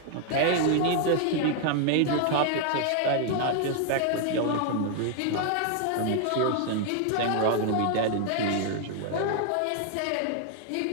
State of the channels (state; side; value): different; both; correlation 0.00